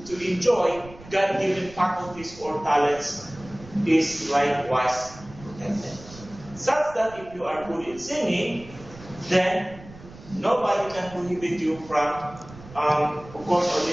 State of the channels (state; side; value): noise; right; rumble, 19 dB below the sound